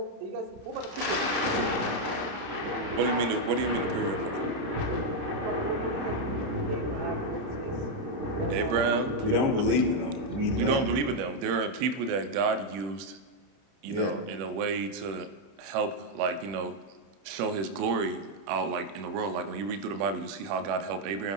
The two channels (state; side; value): late; left; 31 ms